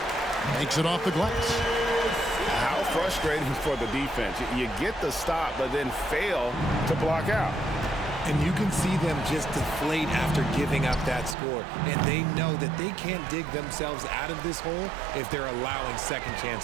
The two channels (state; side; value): drops out; left; at 11.4 s